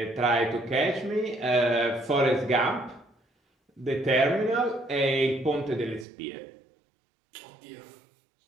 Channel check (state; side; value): drops out; left; at 6.1 s